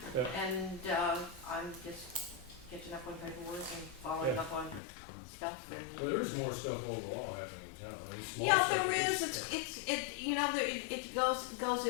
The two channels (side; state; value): right; drops out; at 4.8 s